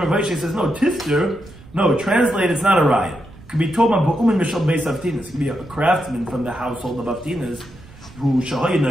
Vaishya says, no, tifter, no, translate, it's not a riot. It could be told by Ba'umin Mishal Beis Avtinas. It could be a craftsman from the household of Avtinas who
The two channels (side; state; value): right; noise; rumble, 21 dB below the sound